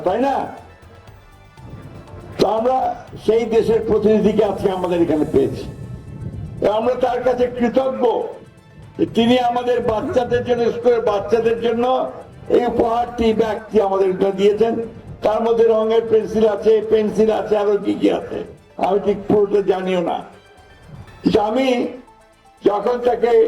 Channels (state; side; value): identical; both; correlation 1.00